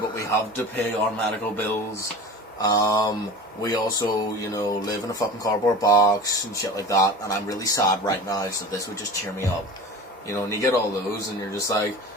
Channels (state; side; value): normal; both; correlation 0.35